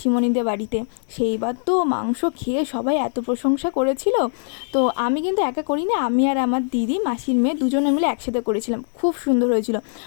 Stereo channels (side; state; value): right; silent; 64 dB below the other